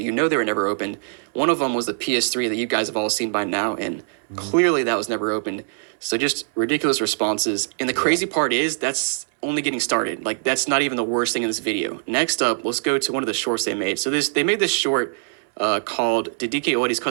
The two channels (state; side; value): silent; left; 64 dB below the other